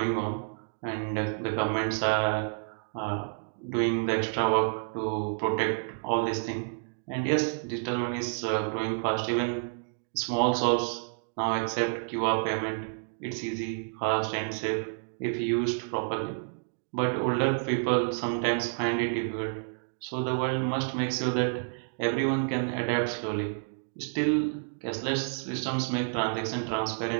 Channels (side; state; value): left; silent; digital silence